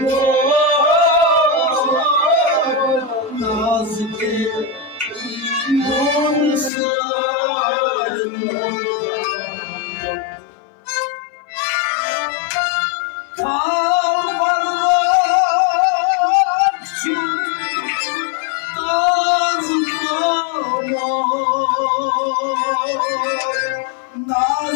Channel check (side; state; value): right; drops out; at 6.7 s